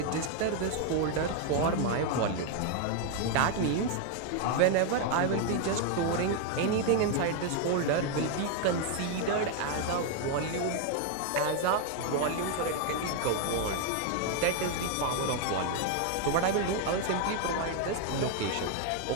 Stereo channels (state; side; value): different; both; correlation 0.00